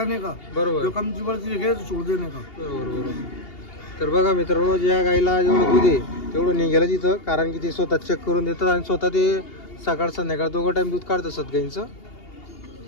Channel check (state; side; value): late; right; 2.8 ms